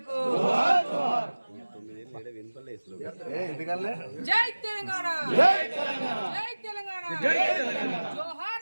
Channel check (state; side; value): inverted; both; correlation -1.00